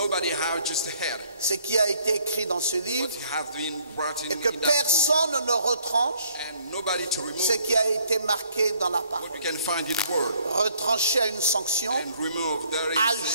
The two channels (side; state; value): both; inverted; correlation -0.63